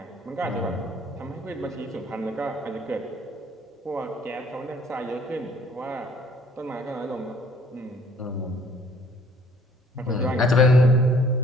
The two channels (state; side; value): normal; both; correlation 0.57